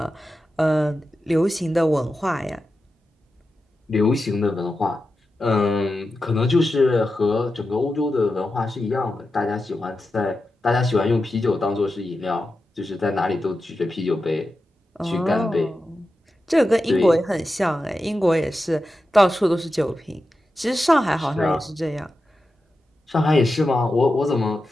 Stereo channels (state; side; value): normal; both; correlation 0.91